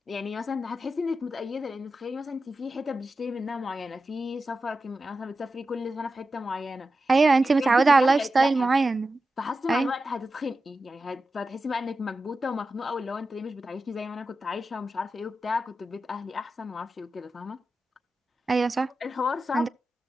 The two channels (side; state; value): both; normal; correlation 0.92